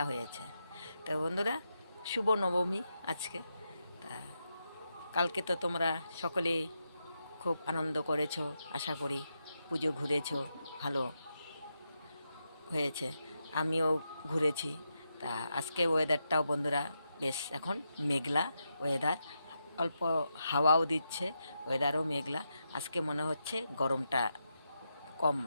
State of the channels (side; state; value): both; inverted; correlation -0.85